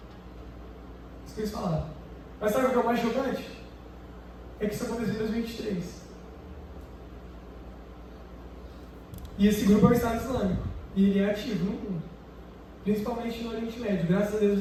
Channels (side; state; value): both; identical; correlation 1.00